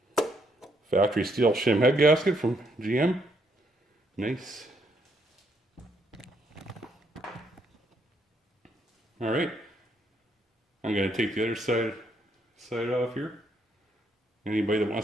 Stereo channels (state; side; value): normal; both; correlation 0.73